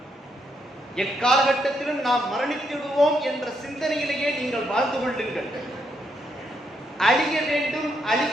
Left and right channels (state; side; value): normal; both; correlation 0.77